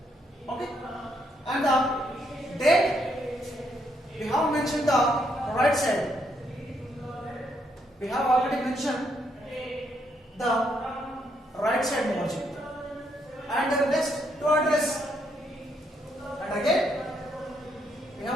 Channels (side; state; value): both; normal; correlation 0.75